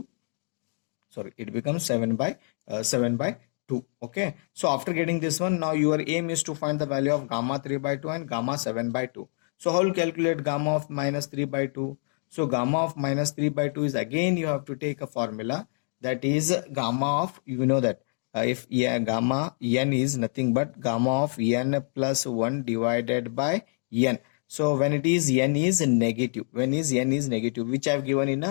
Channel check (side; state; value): right; silent; 60 dB below the other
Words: Sorry, it becomes 7 by 2. Okay, so after getting this one, now your aim is to find the value of gamma 3 by 2 and gamma 7 by 2. So how will calculate gamma of minus 3 by 2? So gamma of minus 3 by 2 is, again you have to take a formula, that is gamma of, you know that if gamma n is nothing but gamma of n plus 1 divided by n. So when it is n is negative, which I have given in